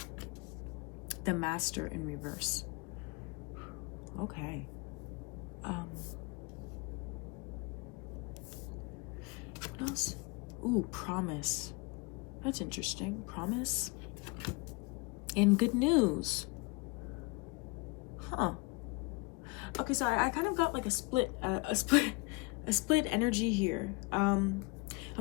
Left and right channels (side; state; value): right; quieter; 27.1 dB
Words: the Master in reverse. Okay. What else? Ooh, promise. That's interesting. Promise. And good news. Huh. Okay, sorry. I kind of got like a split energy here. I'm